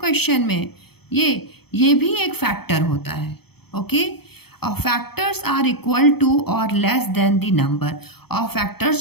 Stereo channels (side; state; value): right; late; 0.97 ms